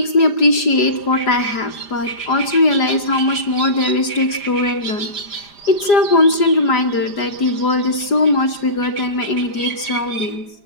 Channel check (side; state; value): right; late; 5.0 ms